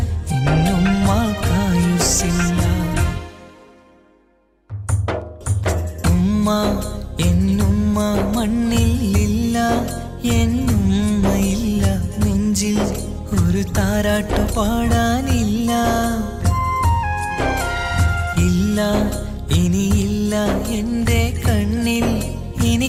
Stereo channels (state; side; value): identical; both; correlation 1.00